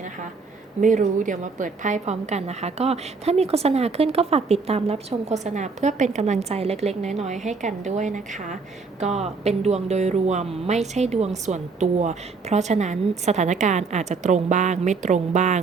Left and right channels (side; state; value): left; quieter; 4.5 dB